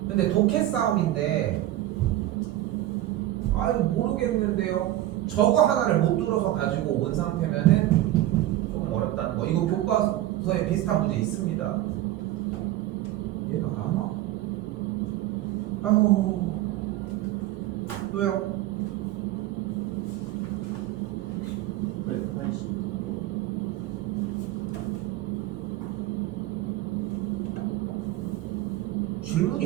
근데 독해 싸움인데 아유 모르겠는데요. 저거 하나를 못 들어서 가지고 온 상태면은 조금 어렵다는 거. 이거 교과서에 비슷한 문제 있습니다. 얘가 안 와? 아유 또요? 180.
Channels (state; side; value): quieter; left; 14.7 dB